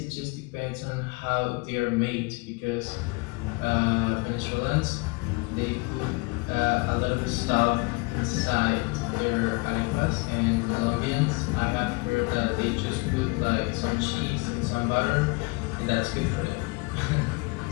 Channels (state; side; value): quieter; right; 27.4 dB